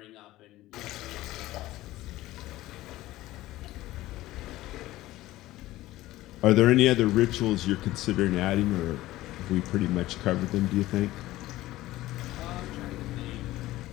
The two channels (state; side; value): quieter; right; 16.7 dB